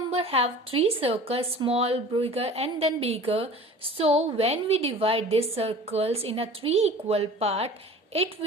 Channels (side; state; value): both; normal; correlation 0.42